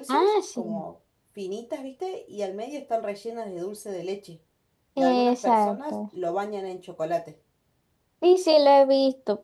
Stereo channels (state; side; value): identical; both; correlation 1.00